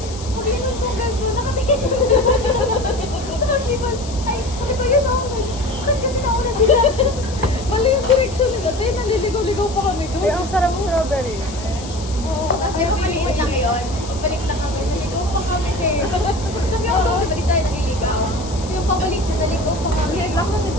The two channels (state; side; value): noise; left; hiss, 15 dB below the sound